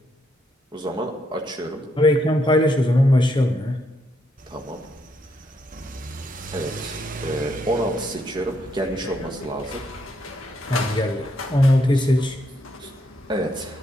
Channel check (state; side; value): normal; both; correlation 0.76